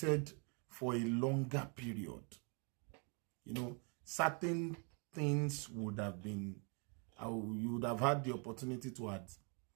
for a longer period. Certain things would have been, you would have had the opportunity to add.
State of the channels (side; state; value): left; quieter; 37.2 dB